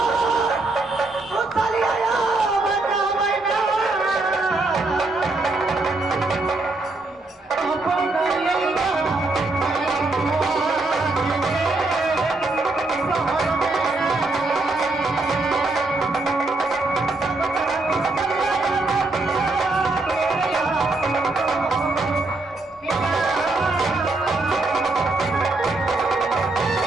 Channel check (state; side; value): quieter; left; 3.2 dB